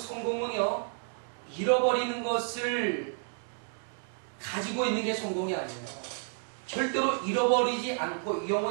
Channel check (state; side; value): silent; left; 57 dB below the other